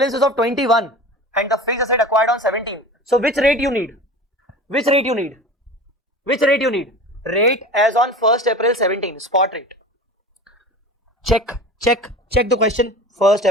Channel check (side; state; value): both; normal; correlation 0.35